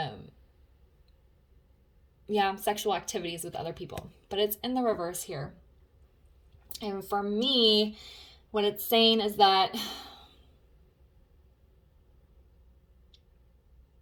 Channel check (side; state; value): both; identical; correlation 1.00